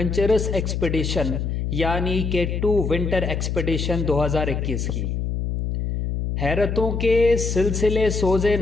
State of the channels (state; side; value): noise; left; hum, 2 dB below the sound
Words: ایکسپیڈیشن یعنی کہ K2 ونٹر ایکسپیڈیشن 2021 کی۔ حیرتوں کے سلسلے سوزے